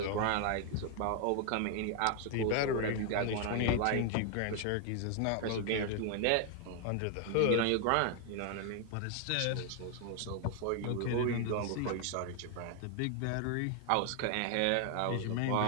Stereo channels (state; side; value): different; both; correlation 0.00